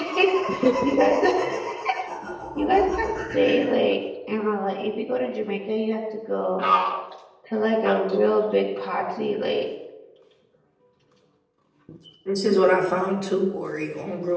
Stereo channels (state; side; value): identical; both; correlation 1.00